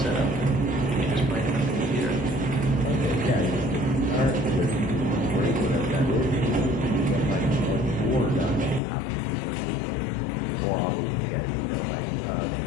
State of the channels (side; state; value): right; drops out; at 8.8 s